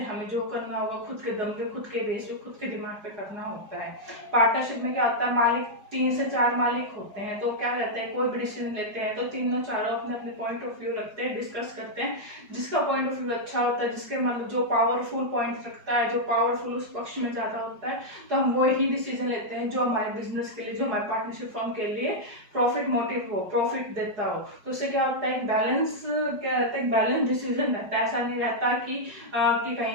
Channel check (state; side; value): late; left; 4.8 ms